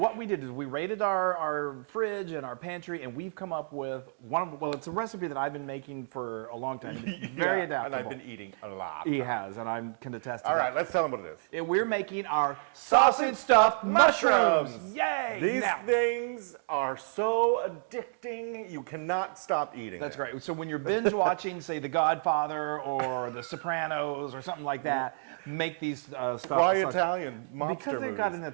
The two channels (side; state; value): left; silent; digital silence